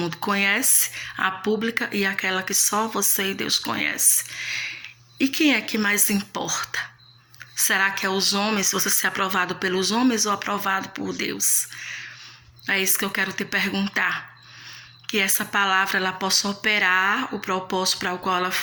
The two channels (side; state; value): both; identical; correlation 1.00